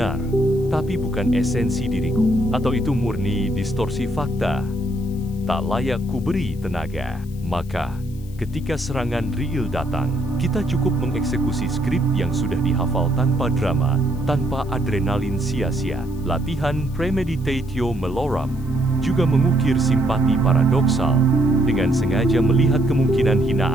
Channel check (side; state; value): left; noise; hiss, 25 dB below the sound